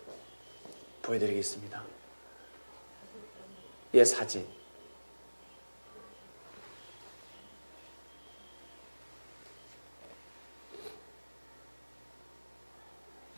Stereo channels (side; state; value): both; inverted; correlation -1.00